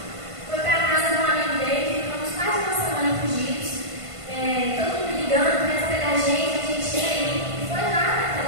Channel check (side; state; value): left; late; 1.5 ms